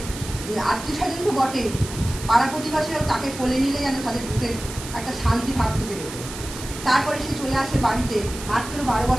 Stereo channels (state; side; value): noise; right; hiss, 11 dB below the sound